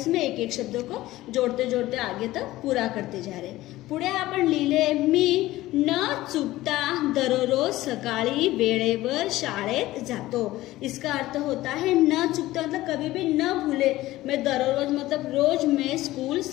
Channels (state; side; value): quieter; right; 16.7 dB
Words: एक एक शब्दों को जोड़ते जोड़ते आगे तक पूरा करते जा रहे। पुढे आपण लिहिले, मी न चुकता दररोज सकाळी वेळेवर शाळेत जातो। इसका अर्थ होता है न चुकता मतलब कभी भी न भूले, मैं दररोज मतलब रोज मैं स्कूल